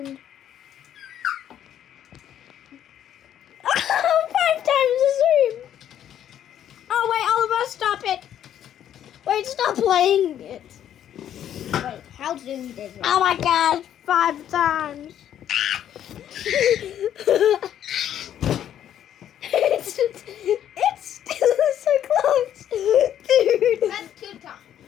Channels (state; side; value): quieter; right; 10.5 dB